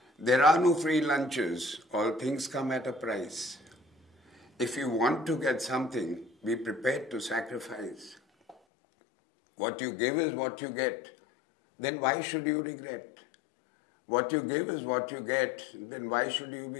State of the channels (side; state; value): right; drops out; at 8.6 s